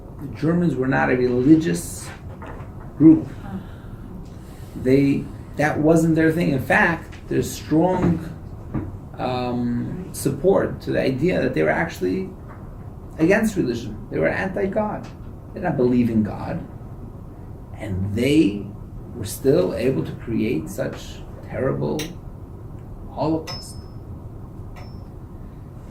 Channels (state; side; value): identical; both; correlation 1.00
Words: The Germans were not a religious group. That wasn't their thing. In fact, there's strong support to the idea that they were actually against religion. They were anti-God. They did not believe in God. And they were still able to create such terrible Holocaust.